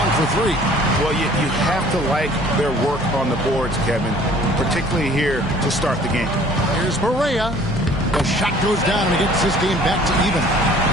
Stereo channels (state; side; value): normal; both; correlation 0.53